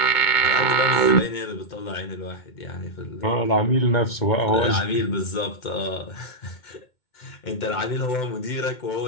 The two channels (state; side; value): late; right; 2.2 ms